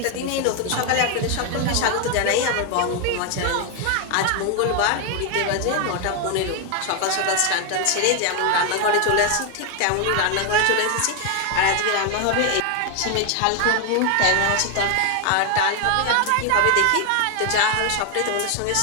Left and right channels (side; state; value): both; different; correlation 0.01